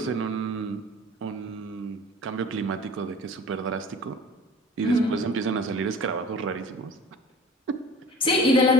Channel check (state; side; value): normal; both; correlation 0.43